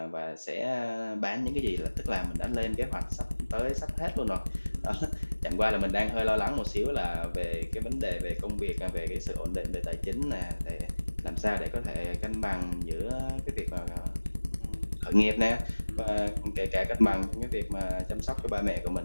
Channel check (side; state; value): both; inverted; correlation -1.00